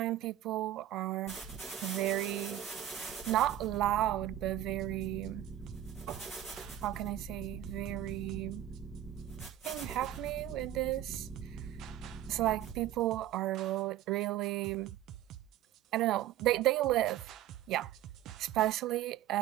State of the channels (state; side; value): quieter; left; 12.5 dB